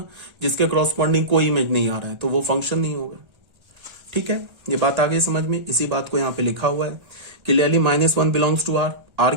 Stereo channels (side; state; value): left; late; 1.3 ms